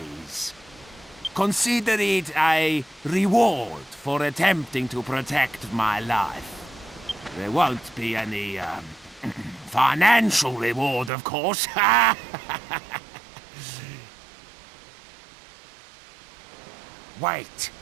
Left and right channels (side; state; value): left; drops out; at 11.1 s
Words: Consider it a reward for attempting to protect my life. There won't be any, financial reward, of course. Wait,